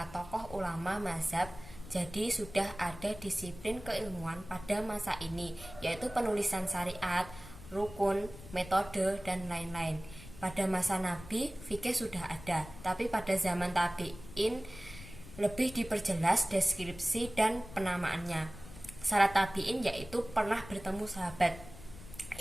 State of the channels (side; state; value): left; noise; rumble, 16 dB below the sound